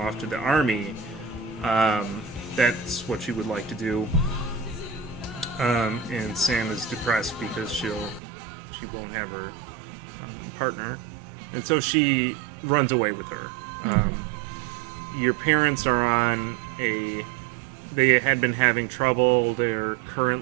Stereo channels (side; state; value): left; drops out; at 8.2 s